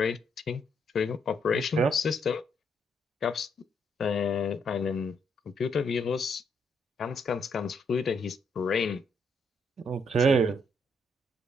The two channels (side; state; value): both; normal; correlation 0.74